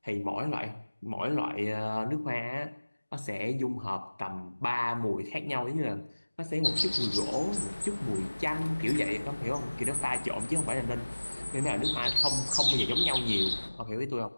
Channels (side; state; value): both; inverted; correlation -1.00